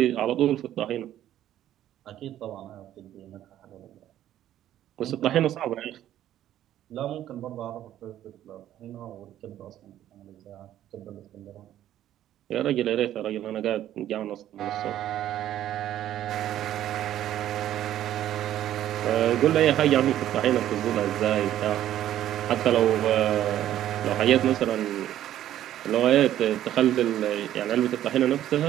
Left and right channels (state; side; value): quieter; left; 12.2 dB